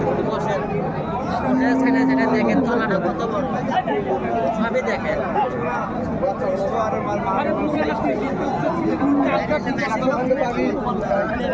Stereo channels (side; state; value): both; identical; correlation 1.00